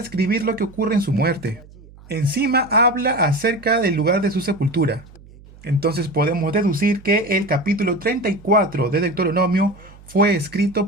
lo que ocurre en su muerte. Encima habla acerca del lugar de su sepultura. Entonces podemos deducir que el capítulo 34 de Deuteronomio fue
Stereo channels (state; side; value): noise; right; hum, 22 dB below the sound